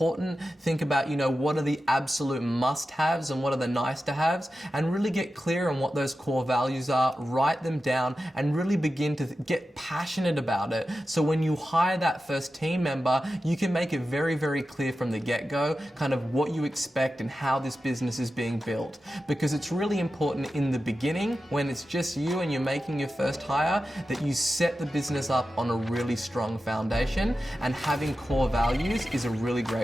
Think about, what are the absolute must-haves and what are the nice-to-haves, and really get clear on what those core values are, write them down, and really begin to get passionate about it. So when you hire that first team member, you can make it very, very clear from the get-go kind of what you expect and how this business is being built. Because it's really important in the beginning, when it's just you and you're making your first hire, that you set the business up on a really strong foundation, and having core values is a really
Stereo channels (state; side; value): normal; both; correlation 0.92